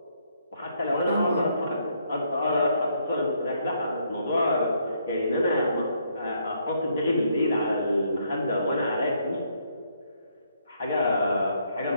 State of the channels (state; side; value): inverted; both; correlation -0.71